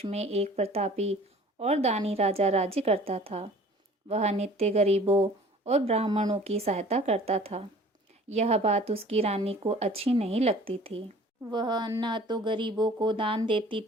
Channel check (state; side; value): normal; both; correlation 0.48